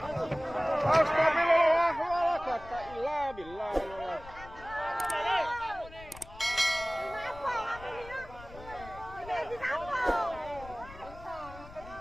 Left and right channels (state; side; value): noise; left; rumble, 17 dB below the sound